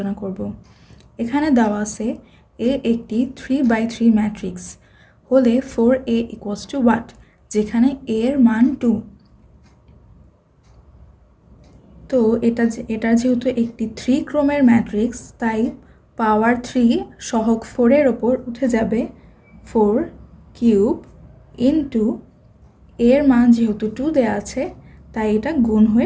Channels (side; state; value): both; identical; correlation 1.00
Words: করব। এখানে দেওয়া আছে এ একটি 3/3 ম্যাট্রিক্স হলে 4a ইকুয়ালস টু হোয়াট, যেখানে a এর মান 2। তো এটার যেহেতু একটি 3 ক্রমের ম্যাট্রিক্স, তাই পাওয়ার 3 সহগ 4-এর ওপর উঠে যাবে 4 কিউব ইন্টু এর মান যেহেতু 2 দেওয়া আছে, তাই এটা গুণ হয়ে